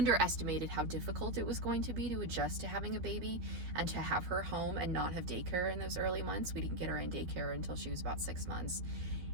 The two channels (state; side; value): late; left; 12 ms